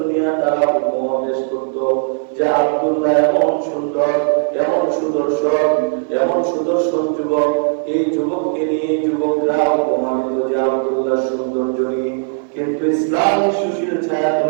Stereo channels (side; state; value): left; silent; 68 dB below the other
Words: তারা উপমা পেশ করত যে আব্দুল্লাহ এমন সুন্দর, এমন সুদর্শন, এমন সুদর্শন যুবক। এই যুবককে নিয়ে যুবকরা উপমা দিত যে আব্দুল্লাহ সৌন্দর্য নিয়ে। কিন্তু ইসলামের সুশীল ছায়া